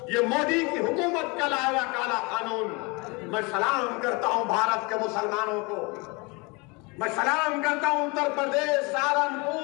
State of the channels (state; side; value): quieter; right; 28.2 dB